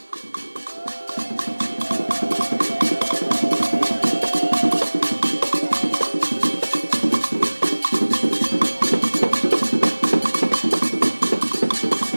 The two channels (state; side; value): inverted; both; correlation -1.00